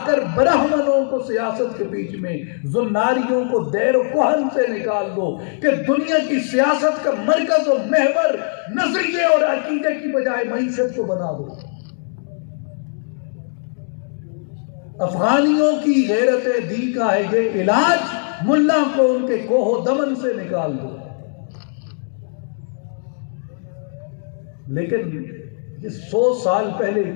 کر برہمنوں کو سیاست کے بیچ میں، زناریوں کو دیر و کوہن سے نکال دو، کہ دنیا کی سیاست کا مرکز و محور نظریے اور عقیدے کی بجائے معیشت کو بنا دو۔ افغانیوں کی غیرت دی کا ہے یہ علاج، ملا کو ان کے کوہ و دمن سے نکال دو۔ لیکن یہ 100 سال پہلے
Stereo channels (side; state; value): right; silent; 66 dB below the other